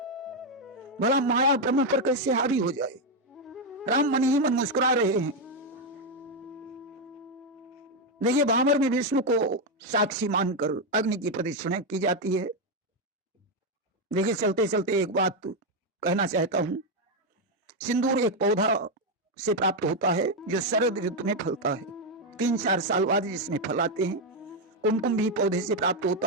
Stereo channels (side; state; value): both; normal; correlation 0.04